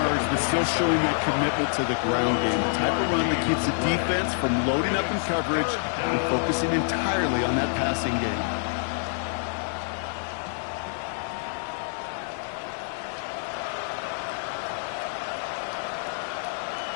but still showing that commitment to the ground game. The type of run that keeps the defense from loading up in coverage and focusing entirely on that passing game.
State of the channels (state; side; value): silent; right; digital silence